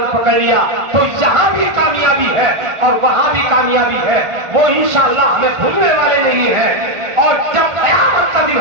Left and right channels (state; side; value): late; left; 1.5 ms